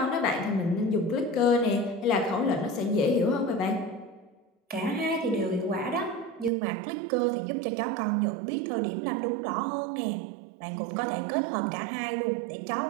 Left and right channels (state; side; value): drops out; left; at 6.5 s